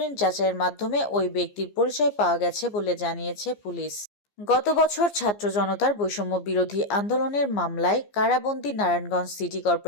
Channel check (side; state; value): right; late; 15 ms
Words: যাচাইয়ের মাধ্যমে ওই ব্যক্তির পরিচয় পাওয়া গেছে বলে জানিয়েছে পুলিশ। গত বছর ছাত্র জনতার বৈষম্য বিরোধী আন্দোলনের মামলায় কারাবন্দী নারায়ণগঞ্জ সিটি